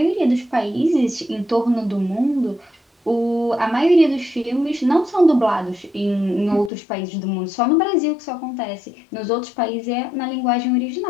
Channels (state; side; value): drops out; right; at 6.7 s